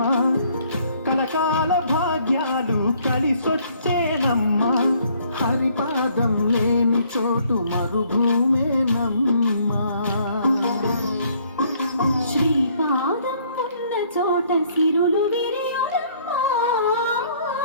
కలకాల భాగ్యాలు కలిసొచ్చేనమ్మా హరిపాదం లేని చోటు మరుభూమేనమ్మా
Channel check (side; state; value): both; inverted; correlation -0.63